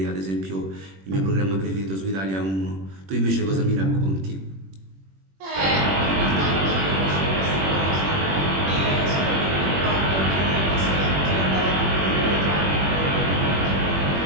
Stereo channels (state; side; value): late; left; 21 ms